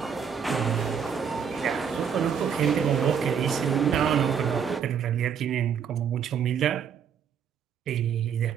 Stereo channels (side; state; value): left; quieter; 7.4 dB